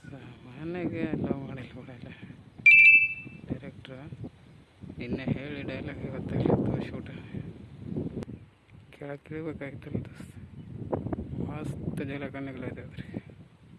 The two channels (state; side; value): identical; both; correlation 1.00